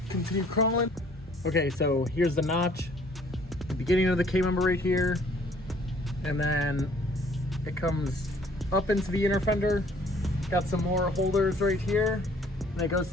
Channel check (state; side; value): normal; both; correlation 0.59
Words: continue crawling. Okay, so here's the notch, the beginning of the K-member right here, and then it comes up into the inner fender. Got some more holders right here, and it goes